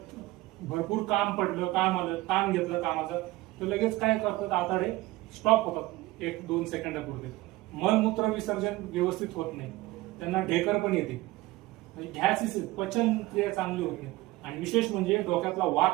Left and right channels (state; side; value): quieter; left; 19.0 dB